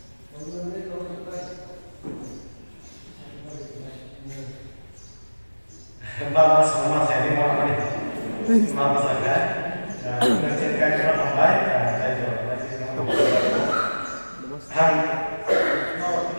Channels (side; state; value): both; inverted; correlation -1.00